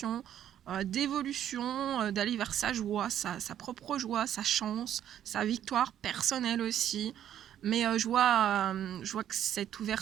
d'évolution, d'aller vers sa joie, sa propre joie, sa chance, sa victoire personnelle aussi. Mais je vois que cette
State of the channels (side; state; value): left; quieter; 10.6 dB